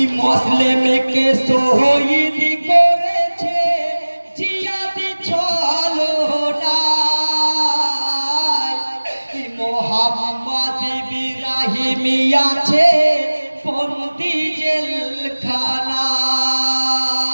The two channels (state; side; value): inverted; both; correlation -1.00